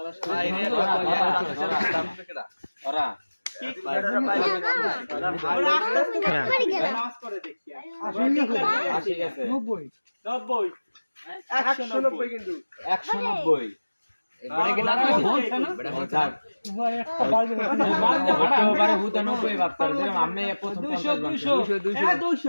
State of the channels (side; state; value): both; inverted; correlation -1.00